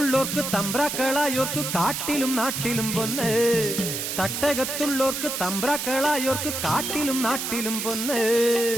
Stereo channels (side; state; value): right; noise; hiss, 3 dB below the sound